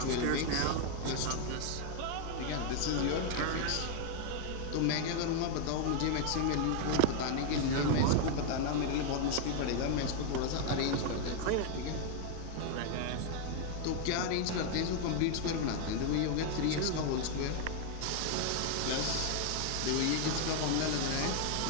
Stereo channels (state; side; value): different; both; correlation 0.00